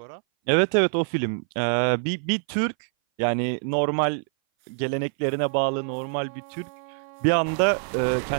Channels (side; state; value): left; silent; 59 dB below the other